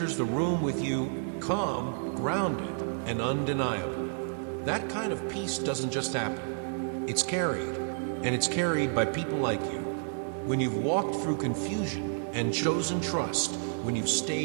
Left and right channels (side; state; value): left; silent; digital silence